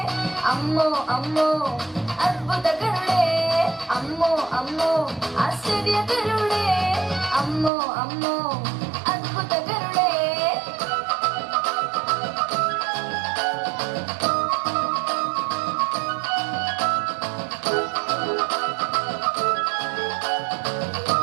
అమ్మో అమ్మో అద్భుతకరుడే, అమ్మో అమ్మో ఆశ్చర్యకరుడే, అమ్మో అమ్మో అద్భుతకరుడే.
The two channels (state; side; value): drops out; left; at 7.7 s